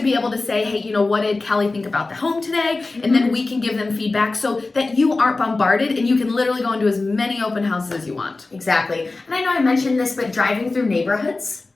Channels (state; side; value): quieter; right; 3.4 dB